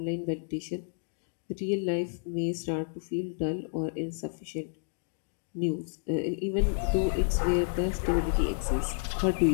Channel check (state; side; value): silent; right; digital silence